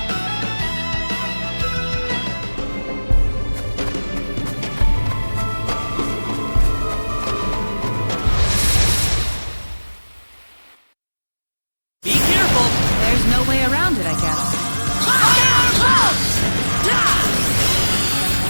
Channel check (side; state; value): both; inverted; correlation -1.00